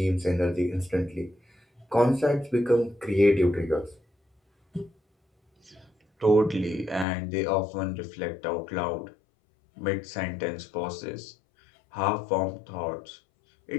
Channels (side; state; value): right; drops out; at 7.1 s